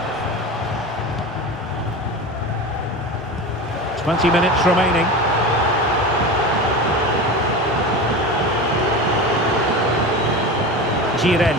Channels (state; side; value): normal; both; correlation 0.28